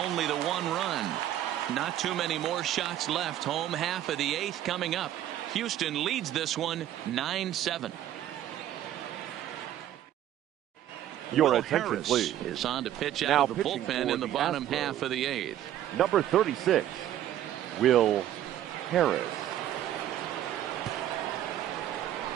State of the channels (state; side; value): quieter; left; 12.1 dB